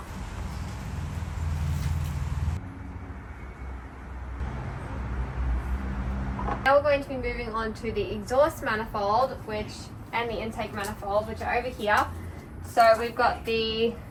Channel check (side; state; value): both; identical; correlation 1.00